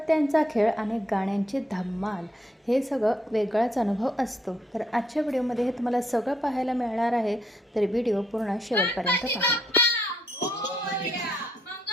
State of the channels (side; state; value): both; normal; correlation 0.73